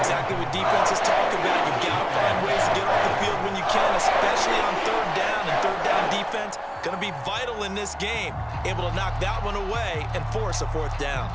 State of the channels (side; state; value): both; identical; correlation 1.00